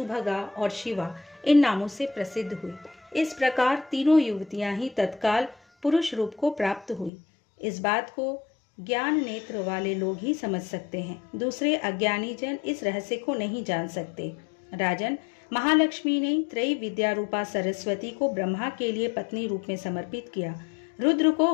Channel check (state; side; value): drops out; right; at 7.1 s